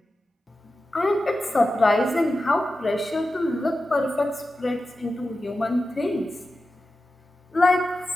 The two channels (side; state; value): both; normal; correlation 0.92